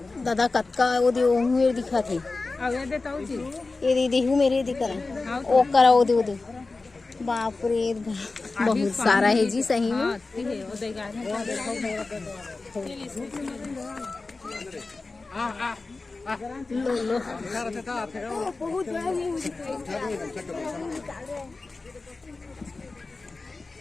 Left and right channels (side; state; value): right; quieter; 3.6 dB